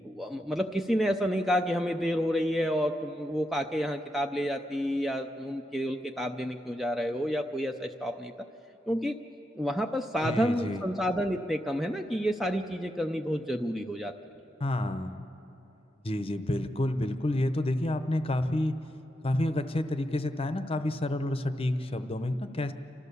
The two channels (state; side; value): normal; both; correlation 0.84